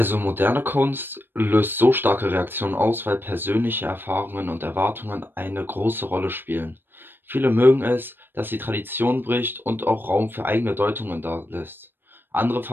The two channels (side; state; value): left; late; 0.097 ms